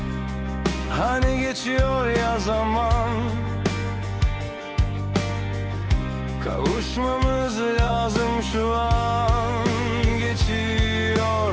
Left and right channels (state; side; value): identical; both; correlation 1.00